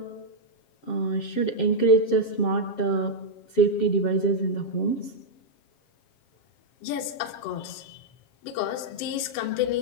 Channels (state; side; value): late; right; 7.4 ms